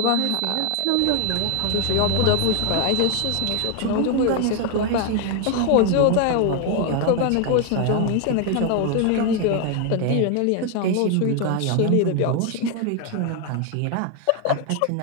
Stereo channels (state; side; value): different; both; correlation 0.01